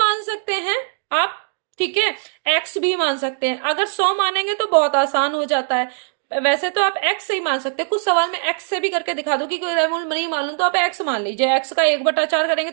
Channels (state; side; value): silent; left; digital silence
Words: सकते हैं आप, ठीक है, x भी मान सकते हैं। अगर 100 मानेंगे तो बहुत आसान हो जाता है, वैसे तो आप x से ही मान सकते हैं, कुछ सवाल में x से भी करके दिखा दो कि मूल नहीं मालूम तो आप x मान लीजिए, x का 1/4 करेंगे